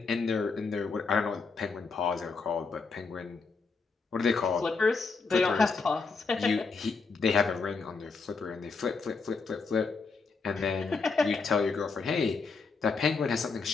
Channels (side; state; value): right; quieter; 4.6 dB